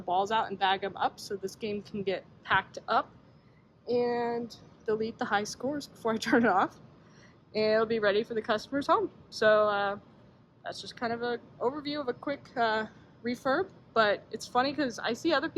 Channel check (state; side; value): identical; both; correlation 1.00